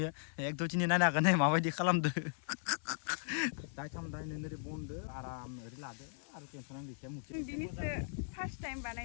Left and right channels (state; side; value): silent; right; 53 dB below the other